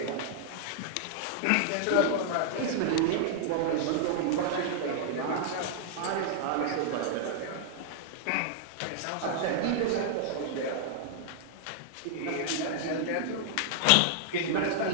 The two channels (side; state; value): both; different; correlation -0.01